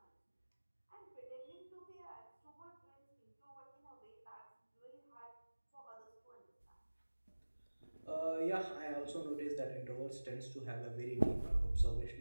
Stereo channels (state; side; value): inverted; both; correlation -1.00